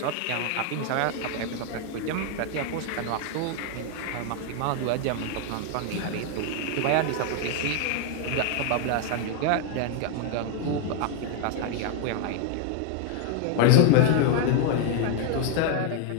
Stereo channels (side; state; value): both; different; correlation 0.01